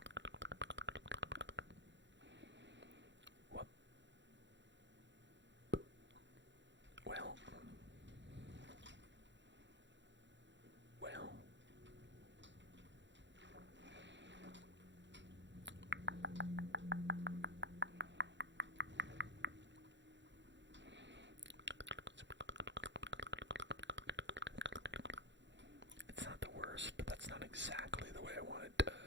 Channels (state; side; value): late; left; 0.53 ms